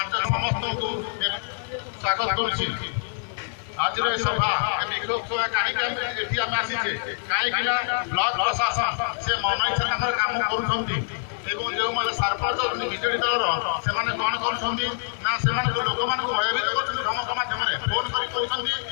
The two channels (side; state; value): right; silent; 56 dB below the other